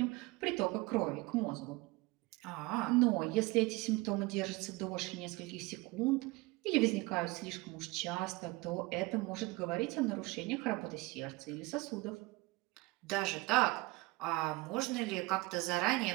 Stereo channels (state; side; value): quieter; left; 23.1 dB